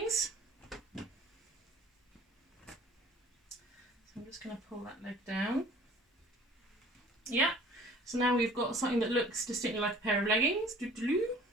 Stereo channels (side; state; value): both; normal; correlation 0.49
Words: So I'm just going to pull that leg down. Yeah, so now we've got something that looks distinctly like a pair of leggings. What